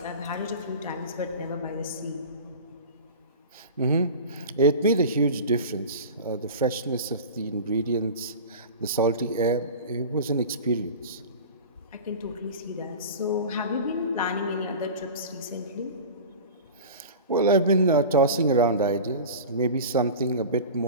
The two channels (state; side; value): inverted; both; correlation -0.33